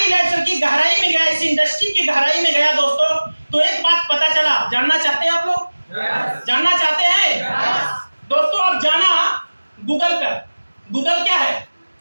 लाइफ की गहराई में गया, इस इंडस्ट्री की गहराई में गया दोस्तों, तो एक बात पता चला। जानना चाहते हैं आप लोग? जानना चाहते हैं? दोस्तों अब जाना गूगल पर। गूगल क्या है?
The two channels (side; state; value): both; inverted; correlation -1.00